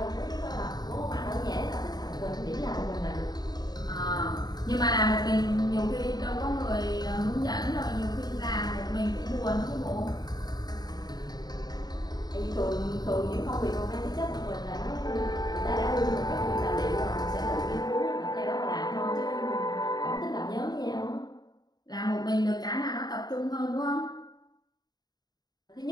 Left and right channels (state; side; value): late; right; 0.20 ms